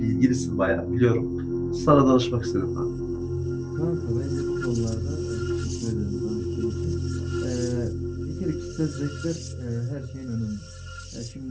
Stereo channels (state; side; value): identical; both; correlation 1.00